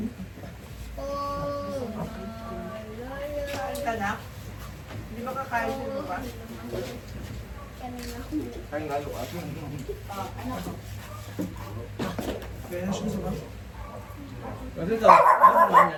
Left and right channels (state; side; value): identical; both; correlation 1.00